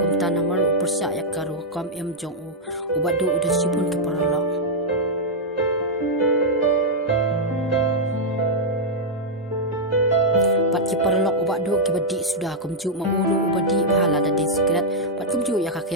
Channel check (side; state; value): both; normal; correlation -0.05